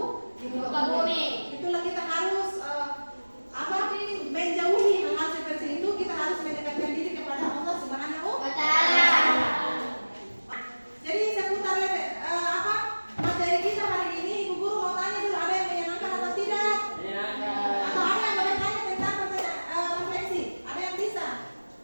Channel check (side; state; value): both; inverted; correlation -1.00